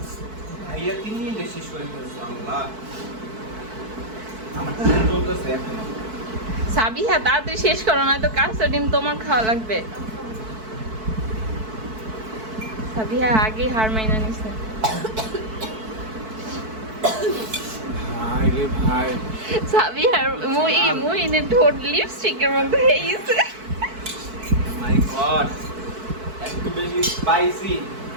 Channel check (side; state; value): left; late; 4.6 ms